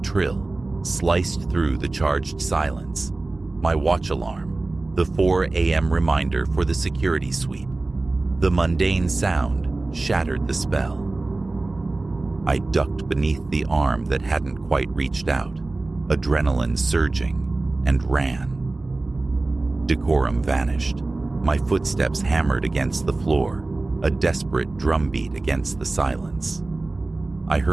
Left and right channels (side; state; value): left; quieter; 3.2 dB